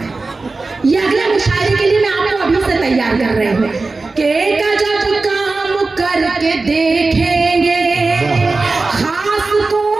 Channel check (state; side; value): quieter; left; 3.7 dB